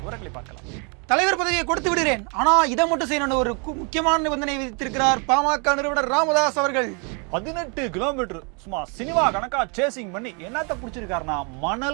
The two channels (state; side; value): quieter; left; 35.5 dB